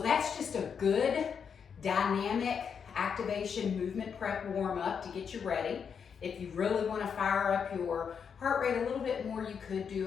just a good dynamic activation movement prep warm up to get you ready. If you really want to fire up your heart rate a little bit more, you could do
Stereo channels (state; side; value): quieter; right; 6.8 dB